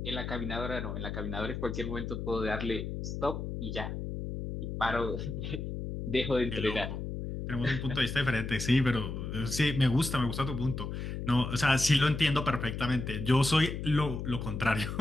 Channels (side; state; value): left; noise; hum, 5 dB below the sound